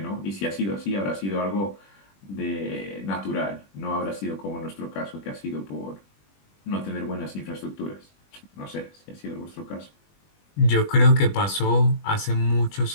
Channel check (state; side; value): late; right; 20 ms